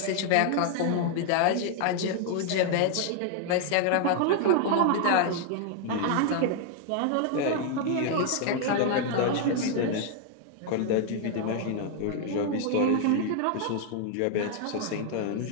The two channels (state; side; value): different; both; correlation 0.00